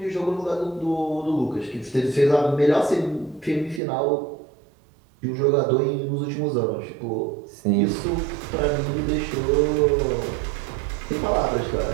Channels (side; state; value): left; drops out; at 3.8 s